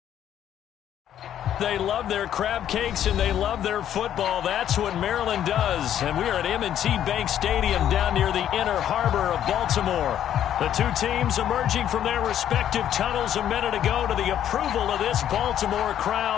They love their crab cakes and they love their football. That's what Maryland does. And we are at M&T Bank Stadium down near the inner harbor of Baltimore. The two teams emerging from their respective tunnels a minute ago to the approval of this Baltimore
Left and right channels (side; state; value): right; quieter; 10.6 dB